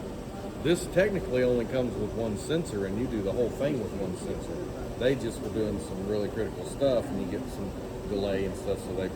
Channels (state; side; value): identical; both; correlation 1.00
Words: This technically only comes with one sensor, and you do the whole thing with one sensor. They just were doing some really critical stuff, and you get some delay and stuff, so